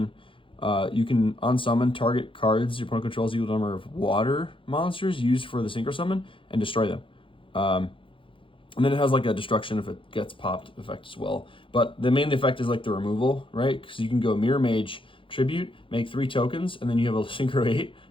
you can unsummon target cards your opponent controls equal number of water monsters used for the Synchro Summon and destroy them. And then it has like a destruction if it gets popped effect as well. But the main effect is like the removal, right? Because you can go Mirror Mage, Tribute, make 3 tokens, and then you have a Synchro 8.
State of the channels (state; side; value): late; right; 0.25 ms